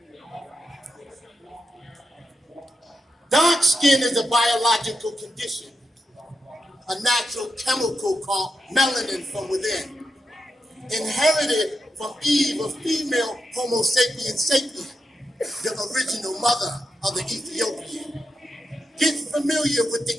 Dark skin is a biological condition, a natural chemical called melanin from within, inherited from Eve, a female Homo sapiens sapien, the original mother of the Ethiopian. Get familiar with the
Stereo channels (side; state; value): both; normal; correlation 0.86